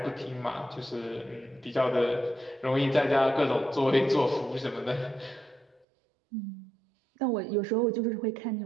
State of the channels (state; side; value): drops out; left; at 5.9 s